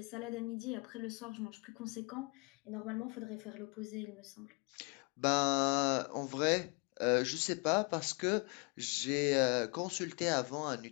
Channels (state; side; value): quieter; right; 32.3 dB